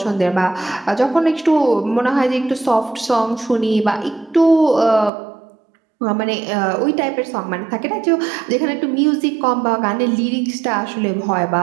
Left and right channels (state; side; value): drops out; left; at 5.1 s